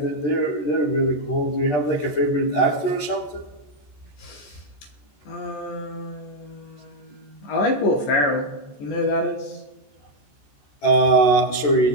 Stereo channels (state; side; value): late; right; 14 ms